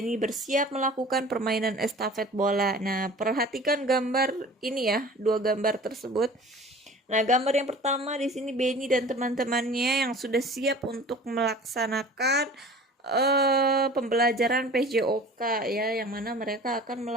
bersiap melakukan permainan estafet bola. Nah, perhatikan gambar ini ya, dua gambar tersebut. Nah, gambar yang pertama di sini Benny dan teman-temannya yang sudah siap untuk melaksanakan pembelajaran PJOK ya, yang mana mereka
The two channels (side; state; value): both; normal; correlation 0.43